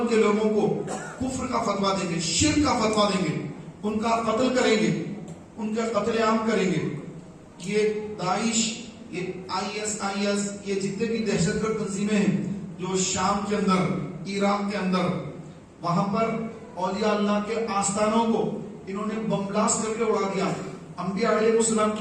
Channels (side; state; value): both; identical; correlation 1.00